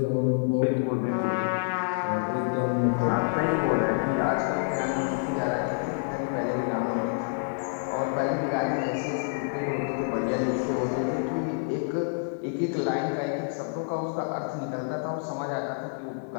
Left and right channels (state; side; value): silent; right; digital silence